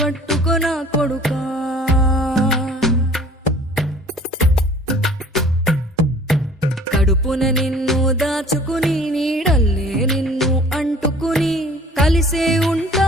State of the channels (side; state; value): both; normal; correlation 0.50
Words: పట్టుకొన కొడుకా. కడుపున నిన్ను దాచుకుని నీడల్లే నిన్ను అంటుకుని కలిసే